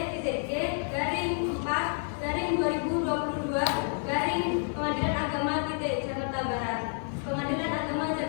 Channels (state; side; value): silent; right; 58 dB below the other